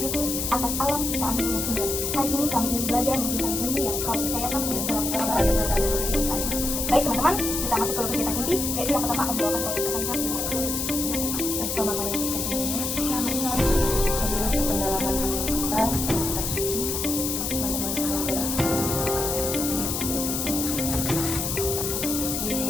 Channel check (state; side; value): noise; left; hiss, 2 dB below the sound